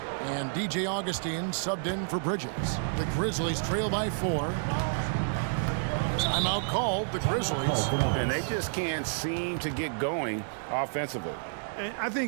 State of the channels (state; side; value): silent; left; 58 dB below the other